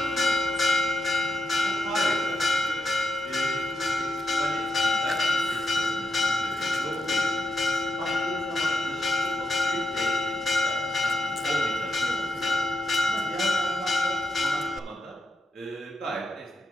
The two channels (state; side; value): normal; both; correlation 0.84